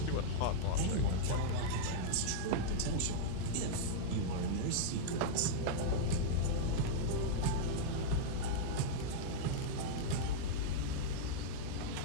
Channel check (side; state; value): both; different; correlation -0.02